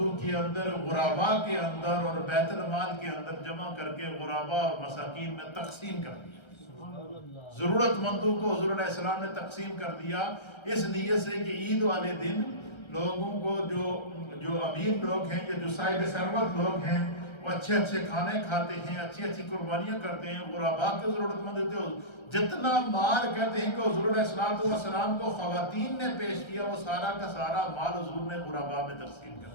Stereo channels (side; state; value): right; late; 1.3 ms